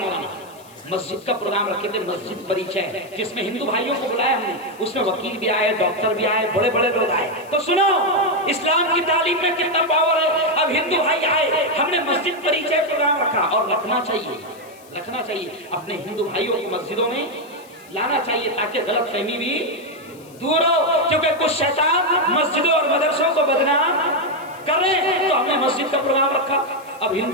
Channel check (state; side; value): noise; left; hiss, 25 dB below the sound